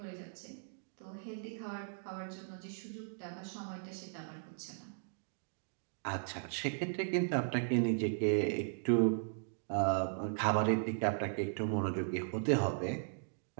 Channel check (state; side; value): silent; left; digital silence